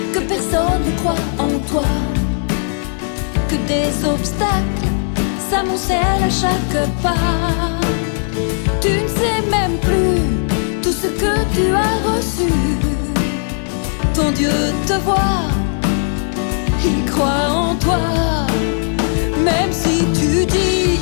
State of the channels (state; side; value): silent; right; 61 dB below the other